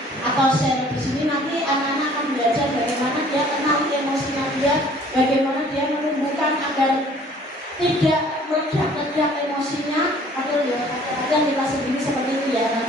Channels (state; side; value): normal; both; correlation 0.54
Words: atau share. Di sini nanti anak-anak akan belajar bagaimana dia kenal emosinya dia, bagaimana dia menumbuhkan agar tidak meledak-ledak emosinya. Atau ya kadang kita sendiri seperti itu ya. Nah,